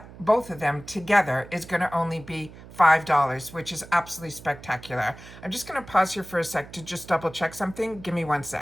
both of them together is going to only be $5, which is absolutely spectacular. I'm just going to pause here for a sec to just double check something. Give me 1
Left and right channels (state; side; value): noise; right; hum, 18 dB below the sound